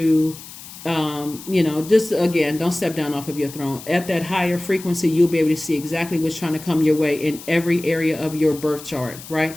just again, don't step down off of your throne. At that higher frequency, you'll be able to see exactly what's trying to come your way in every area of your birth chart, right?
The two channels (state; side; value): noise; left; hiss, 15 dB below the sound